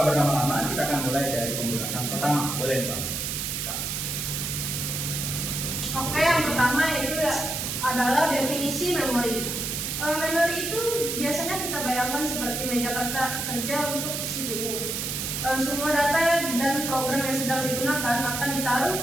berlama-lama kita akan mulai dari pembahasan pertama. Boleh nih Pak? Oke, yang pertama itu adalah definisi memori. Memori itu biasanya kita bayangkan seperti meja kerja untuk CPU. Semua data dan program yang sedang digunakan akan ditaruh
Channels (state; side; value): noise; right; hiss, 3 dB below the sound